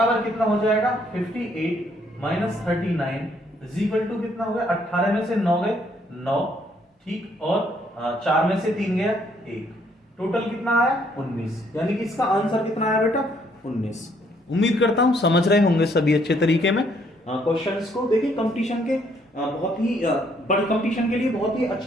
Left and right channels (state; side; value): normal; both; correlation 0.68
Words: कितना हो जाएगा 58 माइनस 39 इज इक्वल टू कितना हो गया 18 में से 9 गए 9, ठीक, और 4 में से 3 गया 1, टोटल कितना आया 19, यानी कि इसका आंसर कितना आया बेटा 19। उम्मीद करता हूं समझ रहे होंगे सभी अच्छे तरीके में क्वेश्चंस को। देखिए कंपटीशन के बहुत ही बड़े कंपटीशन के लिए बहुत ही